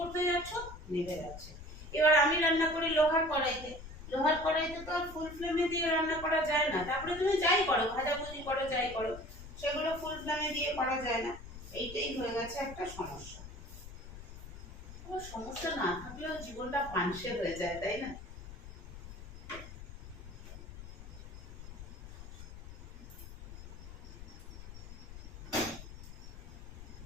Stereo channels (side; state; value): left; noise; rumble, 13 dB below the sound